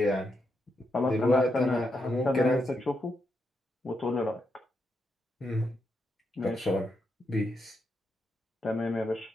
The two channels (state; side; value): normal; both; correlation 0.82